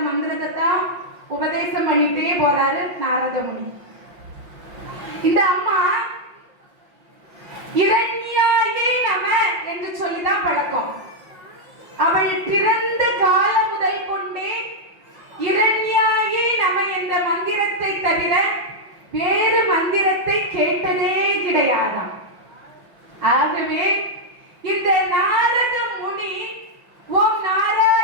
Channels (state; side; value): late; left; 5.9 ms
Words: மந்திரத்தை தான் உபதேசம் பண்ணிட்டே போறாரு நாரத முனி. இந்த அம்மா இரண்யாயே நம என்று சொல்லிதான் பழக்கம். அவள் பிறந்த காலம் முதல் கொண்டே இரண்யாயே நம என்ற மந்திரத்தை தவிர வேறு மந்திரத்தை கேட்டதே கிடையாதாம். ஆகவே இந்த நாரத முனி ஓம்